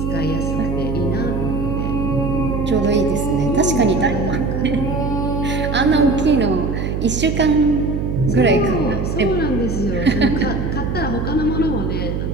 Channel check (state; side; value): noise; right; hum, 2 dB below the sound